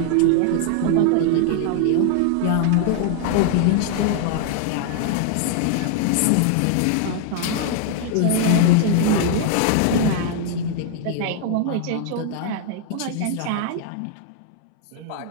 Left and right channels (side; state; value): both; different; correlation 0.00